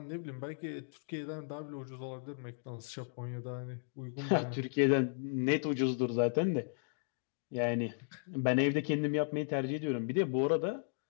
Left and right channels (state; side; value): silent; right; digital silence